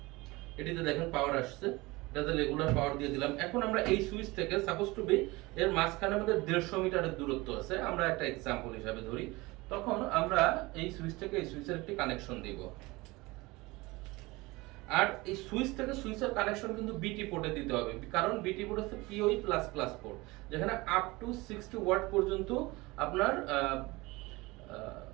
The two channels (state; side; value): quieter; left; 22.3 dB